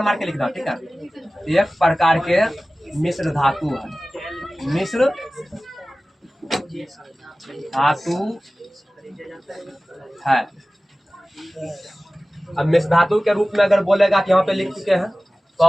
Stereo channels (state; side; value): normal; both; correlation 0.97